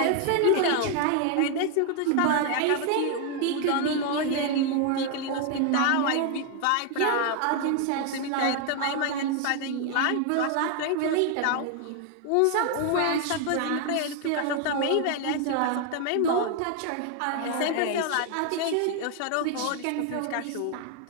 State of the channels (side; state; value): both; different; correlation 0.00